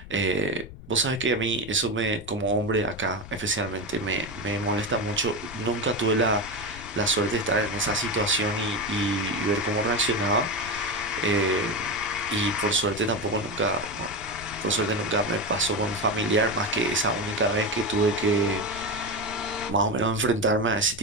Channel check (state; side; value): noise; left; rumble, 15 dB below the sound